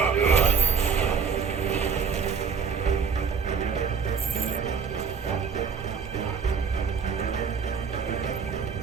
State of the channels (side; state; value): left; quieter; 6.1 dB